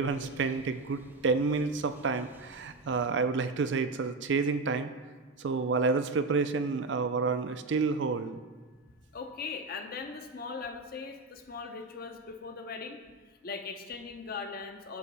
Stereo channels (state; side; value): quieter; left; 3.4 dB